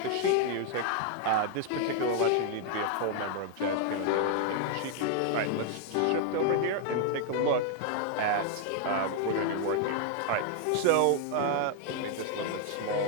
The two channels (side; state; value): both; different; correlation 0.00